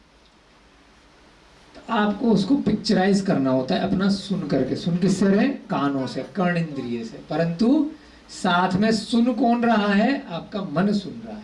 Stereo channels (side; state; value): both; identical; correlation 1.00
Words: तो आपको उसको पिक्चराइज करना होता है अपना सुन करके। सुन किससे रहे? कानों से, कर्ण इंद्रिय से। परंतु साथ में सुन कौन रहा है? आपका मन सुन रहा